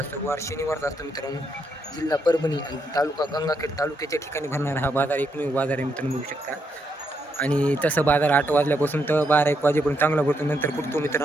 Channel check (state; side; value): normal; both; correlation 0.78